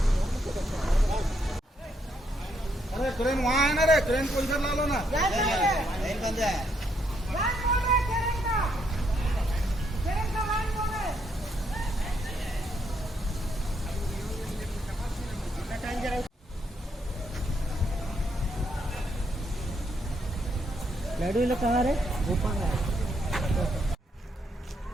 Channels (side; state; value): both; normal; correlation 0.75